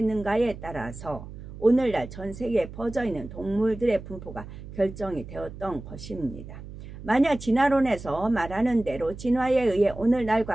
따라서 오늘날 전 세계에 퍼져있는 동물들의 분포가 결정이 되었던 것입니다. 만약 진화론에서 말하는 대로 진화에 의해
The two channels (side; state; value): right; noise; hum, 13 dB below the sound